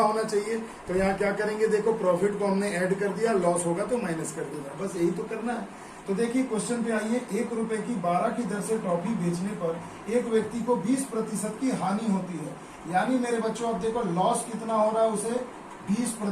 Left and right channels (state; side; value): identical; both; correlation 1.00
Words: होना चाहिए। तो यहाँ क्या करेंगे? देखो प्रॉफिट को हमने ऐड कर दिया, लॉस होगा तो माइनस कर देगा, बस यही तो करना है। तो देखिए क्वेश्चन पे आइए। ₹1 की 12 की दर से टॉफी बेचने पर एक व्यक्ति को 20% की हानि होती है। यानी मेरे बच्चों अब देखो लॉस कितना हो रहा है उसे?